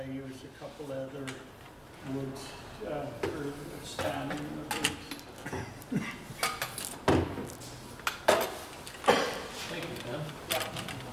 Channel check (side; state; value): both; identical; correlation 1.00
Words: use a couple other woods for standing in the birch. Thank you, Ken.